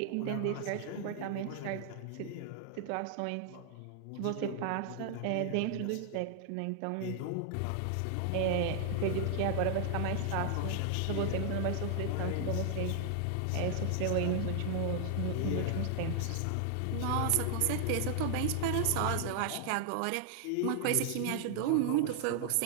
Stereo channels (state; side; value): different; both; correlation 0.00